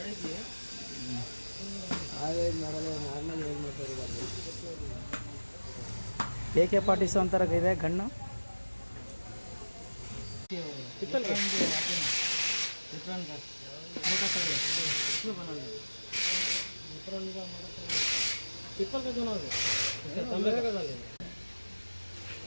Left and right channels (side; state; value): both; inverted; correlation -1.00